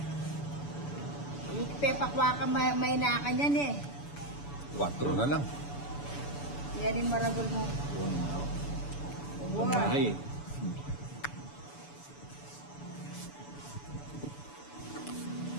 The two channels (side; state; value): right; late; 7.0 ms